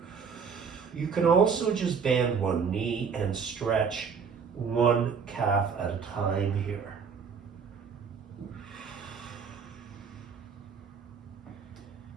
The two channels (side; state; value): left; quieter; 6.2 dB